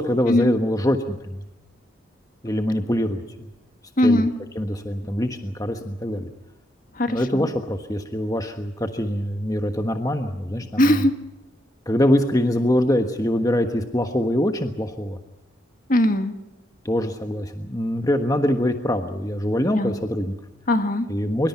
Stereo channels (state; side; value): normal; both; correlation 0.80